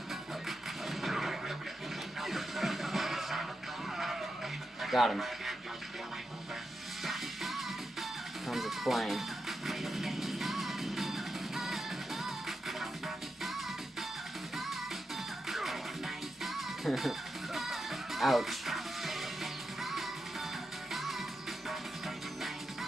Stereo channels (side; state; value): both; normal; correlation 0.88